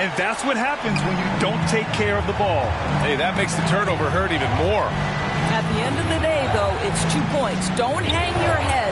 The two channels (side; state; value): both; identical; correlation 1.00